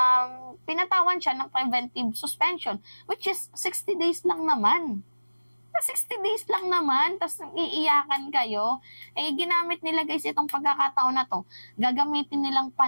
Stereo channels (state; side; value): inverted; both; correlation -1.00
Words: pinatawan siya ng preventive suspension, which is 60 days lang naman. 60 days lang naman, tapos iiyakan kayo. Ginamit nila guys itong pagkakataon na to, gagamitin nilang